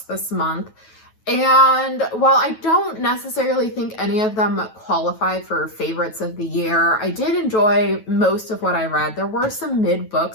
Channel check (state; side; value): late; right; 9.3 ms